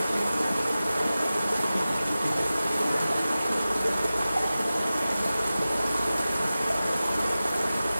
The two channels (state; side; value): inverted; both; correlation -0.96